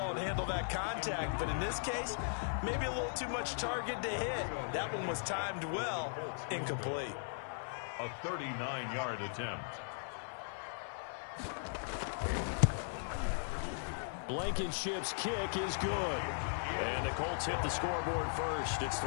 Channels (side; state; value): right; silent; 52 dB below the other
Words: and handle that contact, but in this case, maybe a little too much target to hit. That one was timed well, incomplete. A 39-yard attempt. Blankenship's kick is good. And the Colts hit the scoreboard first. It's